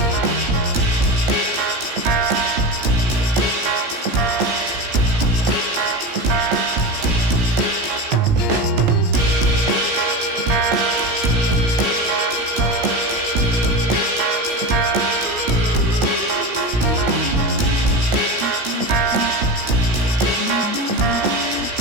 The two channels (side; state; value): left; late; 17 ms